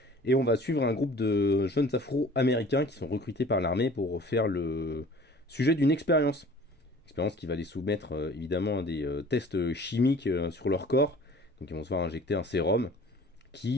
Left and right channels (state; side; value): normal; both; correlation 0.48